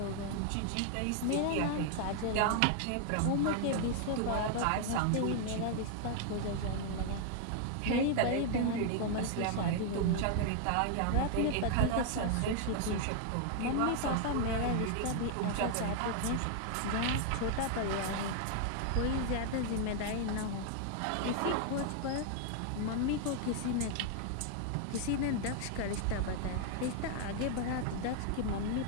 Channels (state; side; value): different; both; correlation 0.00